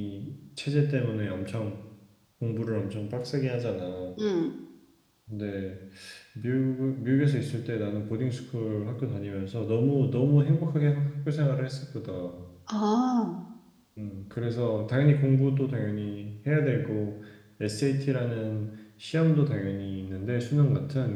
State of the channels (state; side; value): identical; both; correlation 1.00